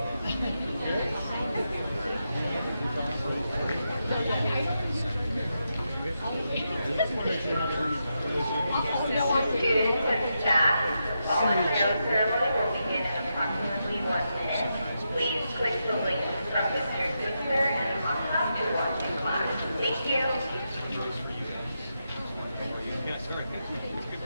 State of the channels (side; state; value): both; inverted; correlation -0.85